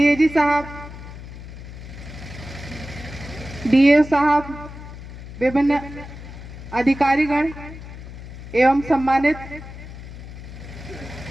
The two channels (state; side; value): noise; left; hum, 13 dB below the sound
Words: साहब, DA साहब, विभिन्न अधिकारीगण एवं सम्मानित